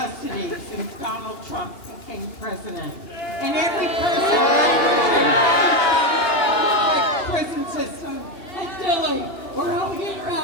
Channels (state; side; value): late; right; 2.8 ms